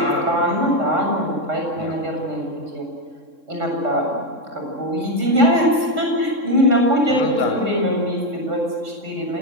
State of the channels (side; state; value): left; late; 3.6 ms